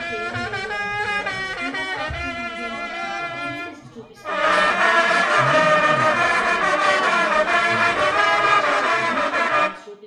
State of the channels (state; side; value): identical; both; correlation 1.00